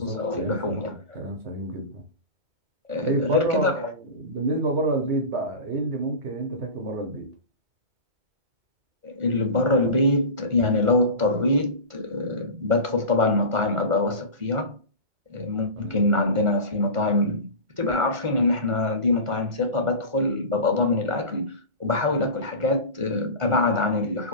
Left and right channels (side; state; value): left; late; 1.4 ms